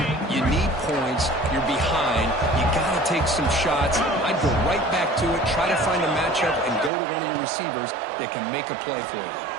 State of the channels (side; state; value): left; drops out; at 6.9 s